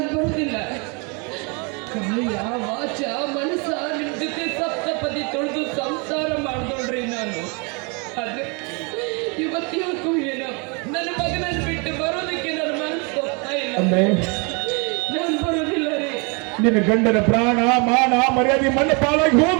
ಬರೋದಿಲ್ಲ. ಕಾಯ ವಾಚ ಮನಸ್ಸ ನಿಮ್ ಜೊತೆ ಸಪ್ತಪದಿ ತೊಳೆದು ಸಂಸಾರ ಮಾಡ್ದೋಳ್ರಿ ನಾನು. ಆದ್ರೆ ಇವತ್ತು ಏನೋ ನನ್ನ ಮಗನನ್ನು ಬಿಟ್ಟು ಬರೋದಕ್ಕೆ ನನ್ನ ಮನಸ್ಸು ಹೋಗ್ತಾ ಇಲ್ಲ. ಅಂದ್ರೆ ನಾನು ಬರೋದಿಲ್ಲ ರೀ. ನಿನ್ನ ಗಂಡನ ಪ್ರಾಣ ಮಾನ ಮರ್ಯಾದೆ ಮಣ್ಣು ಪಾಲಾಗಿ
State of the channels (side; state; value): left; quieter; 32.4 dB